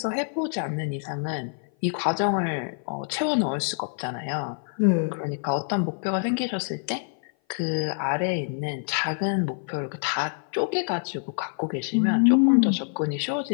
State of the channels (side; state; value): right; silent; 56 dB below the other